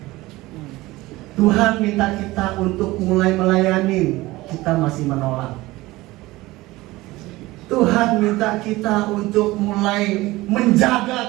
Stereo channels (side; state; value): left; quieter; 19.3 dB